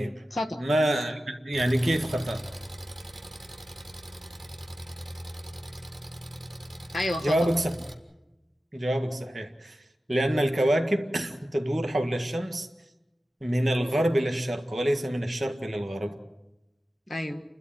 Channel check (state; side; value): normal; both; correlation 0.94